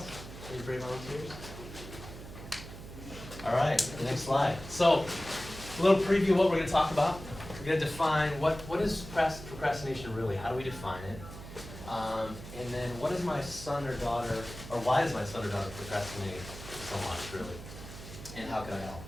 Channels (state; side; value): noise; right; hum, 13 dB below the sound